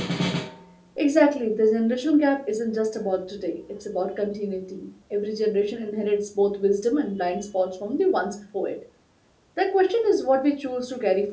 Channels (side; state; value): both; identical; correlation 1.00